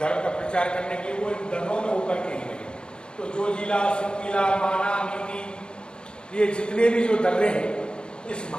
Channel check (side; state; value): right; late; 0.051 ms